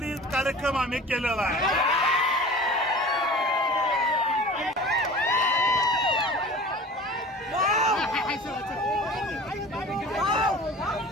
कार्यक्रम आम्ही केलेला आहे.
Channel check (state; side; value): normal; both; correlation 0.39